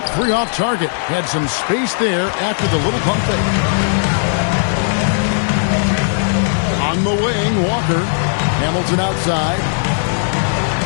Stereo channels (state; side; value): silent; right; digital silence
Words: three off target. Had some space there after the little pump fake. On the wing, Walker. Hamilton outside.